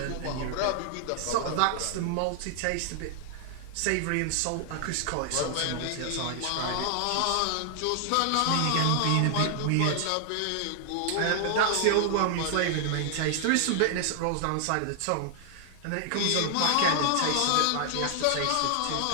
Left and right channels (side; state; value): both; different; correlation 0.00